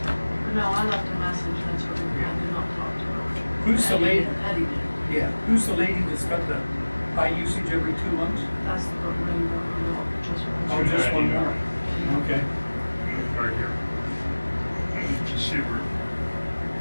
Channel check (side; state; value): both; inverted; correlation -1.00